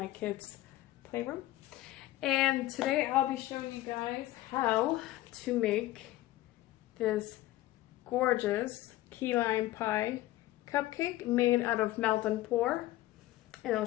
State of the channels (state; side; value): quieter; right; 16.2 dB